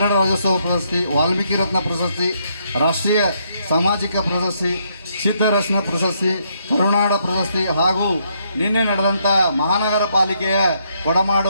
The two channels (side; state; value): both; inverted; correlation -0.74